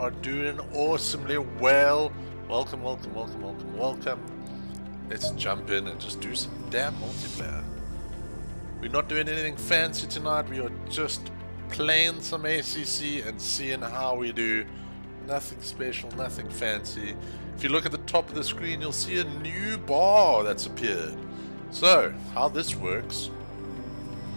doing awesomely well. Welcome, welcome, welcome, welcome, welcome. Let's jump in and just do some damn multiplayer. We're not doing anything fancy tonight. We are just playing some ACC and seeing how we do. Nothing special, nothing fancy. If you look at the top of the screen, you'll see a new bar that's appeared. So, how this works,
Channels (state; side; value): inverted; both; correlation -1.00